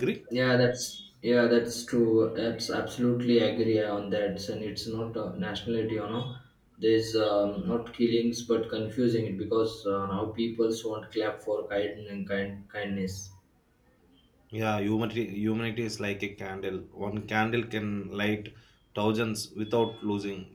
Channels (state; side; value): identical; both; correlation 1.00